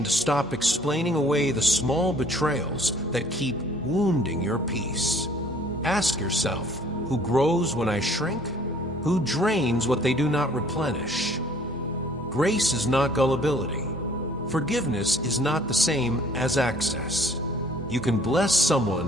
to stop explaining away the small betrayals that keep wounding your peace. Ask yourself, who grows when I shrink? Who drains what they do not replenish? Grace is not gullibility. Forgiveness is not the same as access. You can bless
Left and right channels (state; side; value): noise; right; hum, 21 dB below the sound